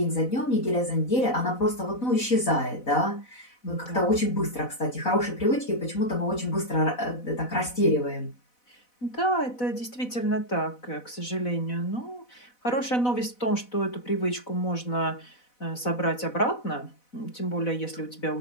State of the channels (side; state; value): right; late; 4.0 ms